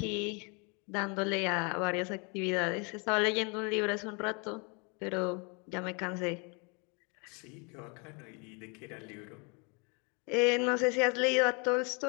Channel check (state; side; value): quieter; right; 32.7 dB